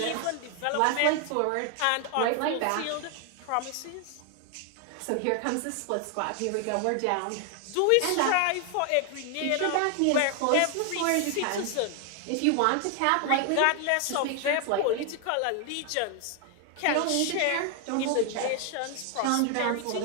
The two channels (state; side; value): different; both; correlation 0.00